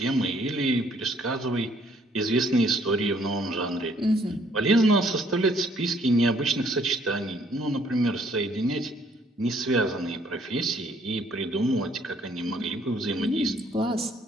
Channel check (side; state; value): both; normal; correlation 0.64